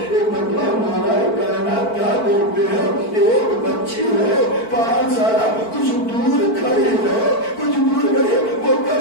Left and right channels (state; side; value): late; right; 4.5 ms